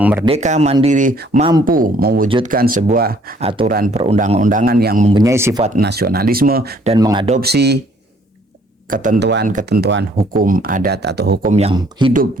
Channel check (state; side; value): normal; both; correlation 0.62